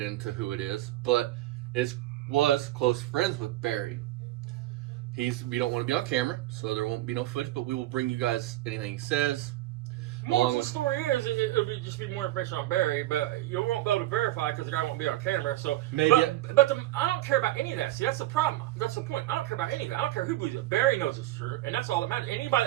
into who it is, but was close friends with Barry. We don't want to be on camera, so there won't be no footage, but we will bring you guys anything he says. More of the story is, it'll just be more information on Barry, but you won't be able to verify because the guy won't be on camera. So Maybe. But I don't care about any of that. See, that's the problem. That's the point. I don't care about any of that. I don't care who believes it. Barry knows it's true, and that's all that matters. Anybody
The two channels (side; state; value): left; quieter; 15.8 dB